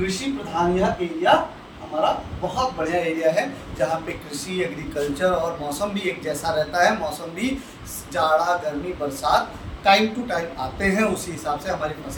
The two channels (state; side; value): identical; both; correlation 1.00